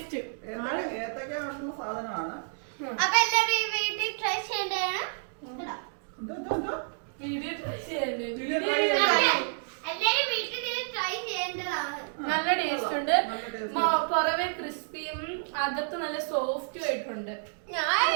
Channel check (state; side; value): silent; left; digital silence